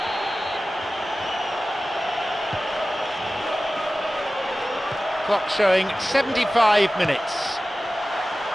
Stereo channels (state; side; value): normal; both; correlation 0.96